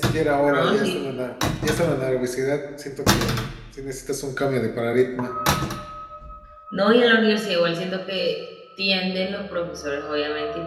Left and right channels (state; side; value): identical; both; correlation 1.00